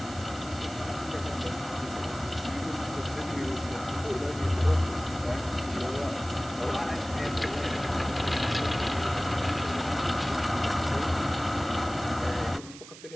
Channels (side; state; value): right; noise; hiss, 16 dB below the sound